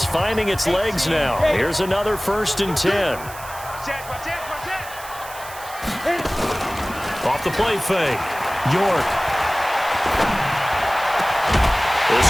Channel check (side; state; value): right; noise; hiss, 15 dB below the sound